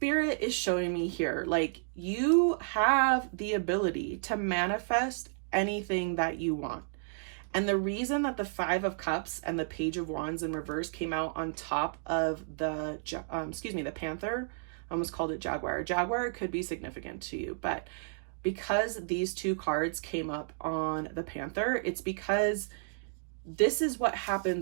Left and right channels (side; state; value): left; silent; digital silence